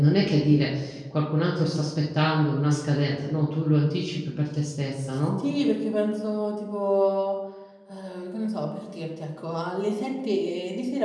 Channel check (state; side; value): identical; both; correlation 1.00